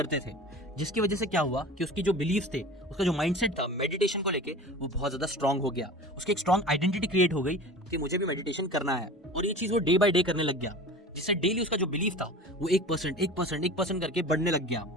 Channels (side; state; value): both; normal; correlation 0.37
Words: थे, जिसकी वजह से क्या हुआ कि उसकी जो बिलीव्स थे, उसका जो माइंडसेट था मेडिटेशन को लेके वो बहुत ज्यादा स्ट्रांग हो गया। उसकी एक स्ट्रांग आइडेंटिटी क्रिएट हो गई कि मुझे भी मेडिटेशन करना है, और ये चीज वो डे बाय डे करने लग गया, जिससे डेली उसका जो बिलीफ था वो 1% करके बढ़ने लग गया